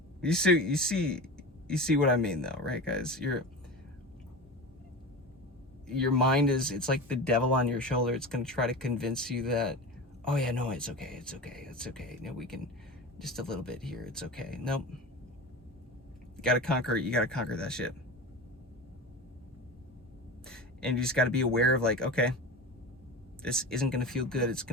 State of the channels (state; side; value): normal; both; correlation 0.29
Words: You see what I mean though, right, guys? Your mind it's like the devil on your shoulder. It's going to try to convince you that, oh yeah, no, it's okay. You know, we can just a little bit here. It's okay. Nope. You got to conquer that shit. And you just got to be aware of, like, okay, this isn't going to feel good. It's